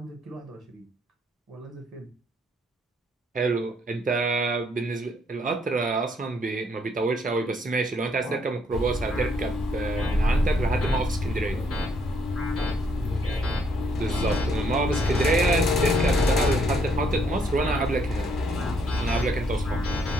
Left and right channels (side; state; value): both; normal; correlation 0.70